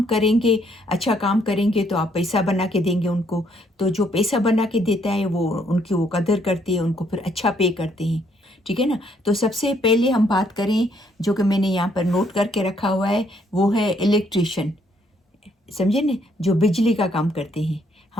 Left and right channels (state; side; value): normal; both; correlation 0.69